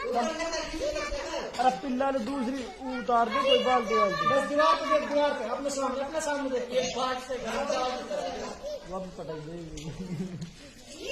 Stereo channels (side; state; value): both; identical; correlation 1.00